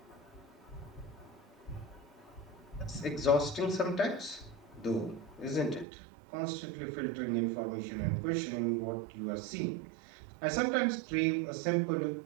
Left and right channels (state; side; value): drops out; left; at 5.9 s